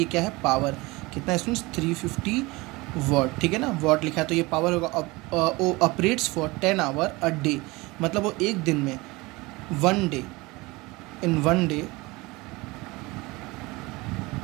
क्या है, पावर कितना है स्टूडेंट्स, 350 वॉट, ठीक है ना। वॉट लिखा है तो ये पावर होगा। Operates for 10 hour a day, मतलब वो एक दिन में वन डे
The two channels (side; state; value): left; quieter; 22.9 dB